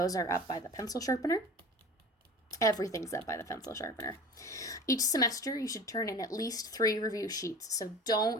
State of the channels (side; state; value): both; normal; correlation 0.38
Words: are up by the pencil sharpener. Everything's up by the pencil sharpener. Each semester, you should turn in at least 3 review sheets. So